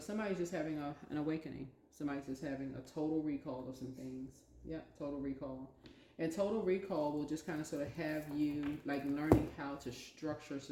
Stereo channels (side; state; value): both; identical; correlation 1.00